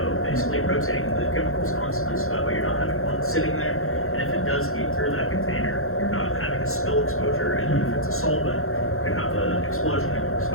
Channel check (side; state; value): right; late; 0.62 ms